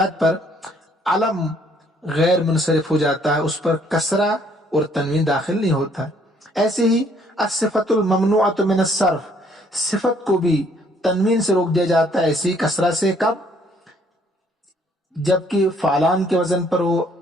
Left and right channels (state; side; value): normal; both; correlation 0.64